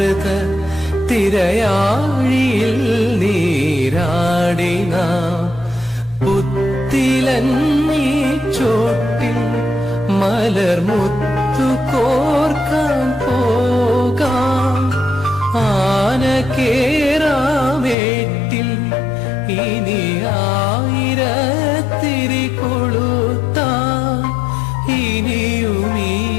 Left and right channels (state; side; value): drops out; right; at 17.9 s